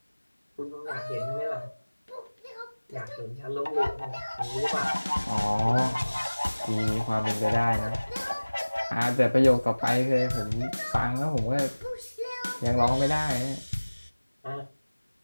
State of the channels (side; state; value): both; inverted; correlation -1.00